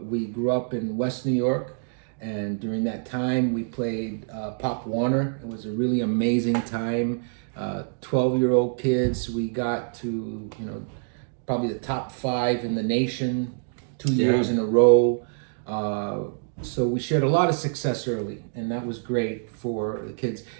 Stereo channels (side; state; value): left; silent; digital silence